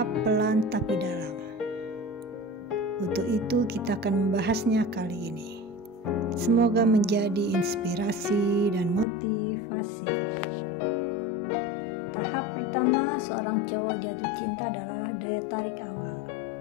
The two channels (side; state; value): right; drops out; at 9.1 s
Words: pelan tapi dalam. Untuk itu kita akan membahasnya kali ini. Semoga menjadi inspirasi dan motivasi. Tahap pertama seorang cowok jatuh cinta adalah daya tarik awal.